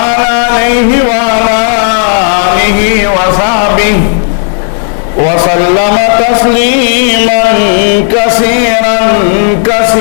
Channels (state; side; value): silent; right; digital silence